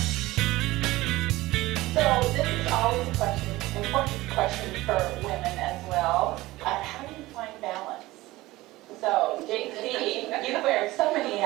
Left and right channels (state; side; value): quieter; left; 18.6 dB